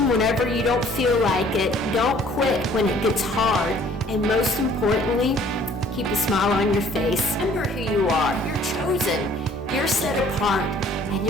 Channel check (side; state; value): both; normal; correlation 0.56